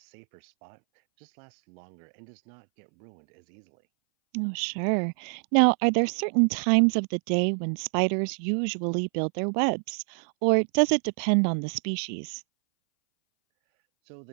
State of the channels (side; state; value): left; silent; 61 dB below the other